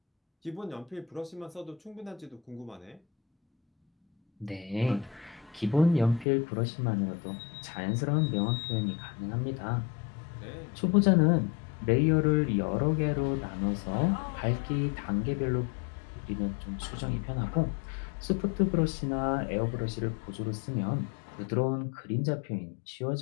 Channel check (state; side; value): drops out; right; at 6.2 s